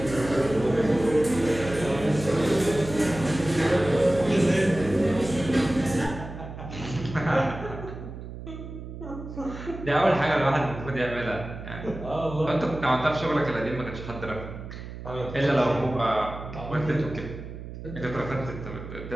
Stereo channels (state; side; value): noise; right; hum, 11 dB below the sound